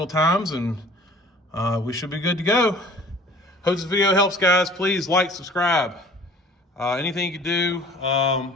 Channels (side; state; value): both; normal; correlation 0.48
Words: times, and we should be good to go. Hope this video helps, guys. Please like, subscribe. Anything you can do to